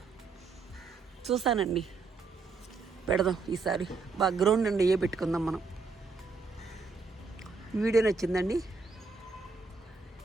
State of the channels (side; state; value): left; quieter; 4.4 dB